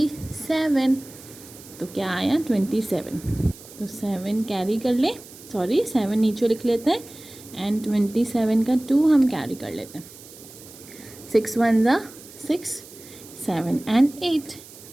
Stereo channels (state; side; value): noise; right; hiss, 19 dB below the sound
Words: तो क्या आया 27। तो 7 कैरी कर ले, 7 नीचे लिख लेते हैं एंड 27 का 2 हम कैरी कर लेते हैं। 6 1 ज़ा 6, 7 and 8,